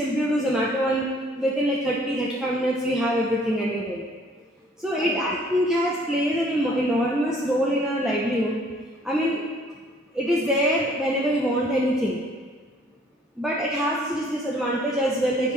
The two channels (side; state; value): both; normal; correlation 0.59